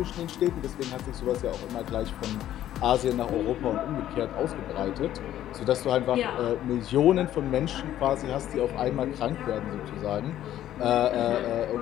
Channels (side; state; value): right; quieter; 12.3 dB